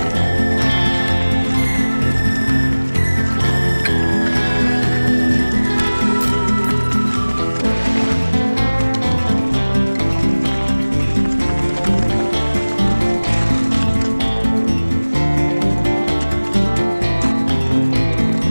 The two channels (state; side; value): inverted; both; correlation -1.00